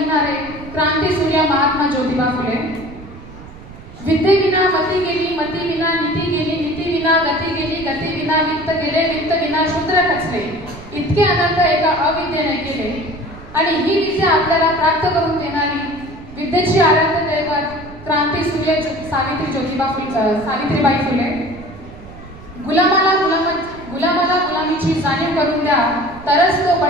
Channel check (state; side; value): noise; right; rumble, 17 dB below the sound